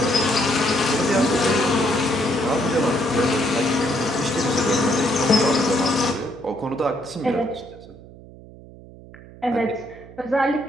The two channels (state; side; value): noise; right; hum, 19 dB below the sound